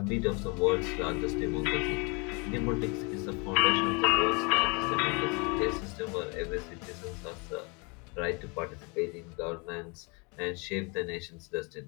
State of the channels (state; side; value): quieter; right; 31.0 dB